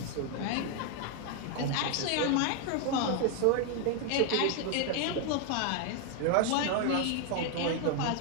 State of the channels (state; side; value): different; both; correlation 0.00